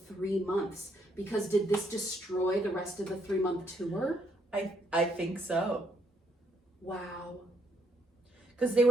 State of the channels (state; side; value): normal; both; correlation 0.71